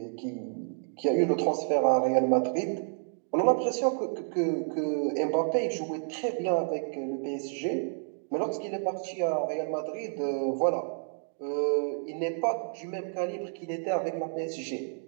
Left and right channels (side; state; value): left; silent; 58 dB below the other